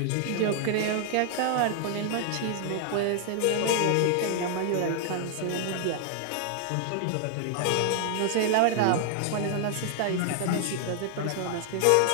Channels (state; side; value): different; both; correlation 0.00